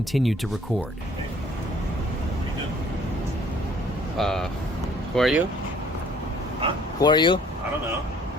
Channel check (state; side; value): normal; both; correlation 0.57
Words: to record. Who are you? Huh? Who are you? I don't know.